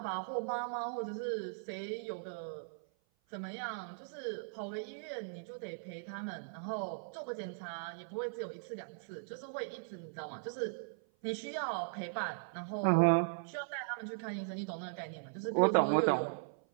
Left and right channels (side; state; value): left; silent; 52 dB below the other